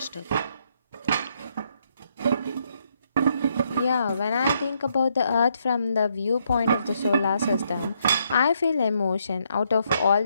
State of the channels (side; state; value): both; inverted; correlation -0.75